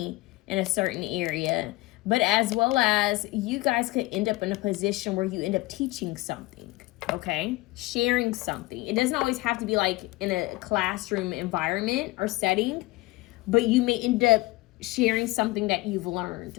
in a certain area. But as well as you guys could end up in a position where you end up teaching something, okay? Sharing something. It doesn't always have to be like in a classroom environment or setting, but you may end up sharing something that you've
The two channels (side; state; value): right; quieter; 20.9 dB